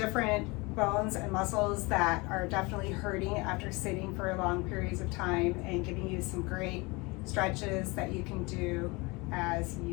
bones and muscles that are definitely hurting after sitting for long periods of time, and giving you some great stretches that you can do as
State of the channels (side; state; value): right; quieter; 25.8 dB